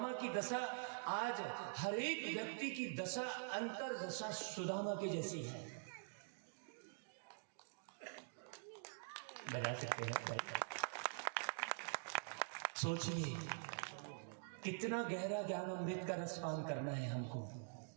की दशा आज हर एक व्यक्ति की दशा, अंतर दशा सुदामा की जैसी है। बजा सकते हैं भाई। सोचिए कितना गहरा ज्ञान अमृत का रसपान करना है हमको,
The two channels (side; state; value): left; silent; digital silence